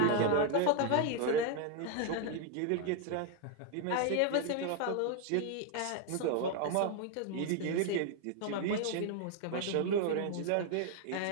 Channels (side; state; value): both; different; correlation 0.00